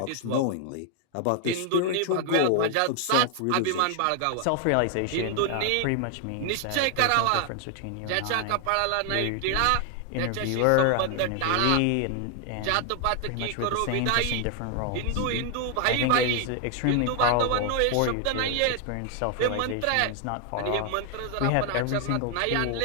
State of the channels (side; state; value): both; different; correlation 0.00